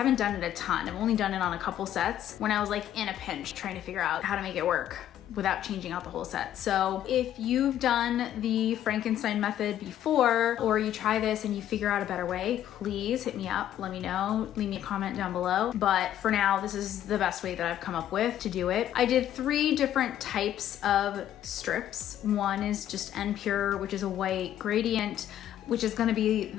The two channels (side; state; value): right; quieter; 11.5 dB